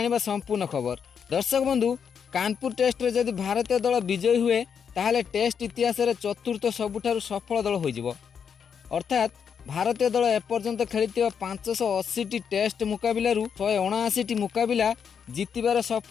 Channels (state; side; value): quieter; right; 7.1 dB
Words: संपूर्ण खबर। दर्शक बंधु, कानपुर टेस्ट रे जदि भारतीय दल विजयी हुए ताहले टेस्ट इतिहास रे चतुर्थ सबुठारु सफल दल होइजिवो। अर्थात भारतीय दल एपर्यंत खेलिथिबा 580 टेस्ट मुकाबिलारू 179 मुकाबिला जीतिबार